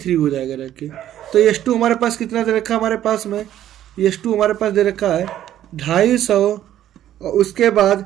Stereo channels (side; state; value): left; quieter; 11.9 dB